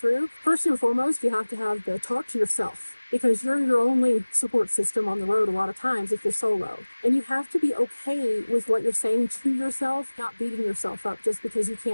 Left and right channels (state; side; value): inverted; both; correlation -1.00